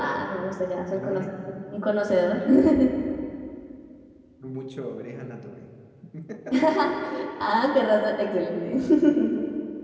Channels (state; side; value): identical; both; correlation 1.00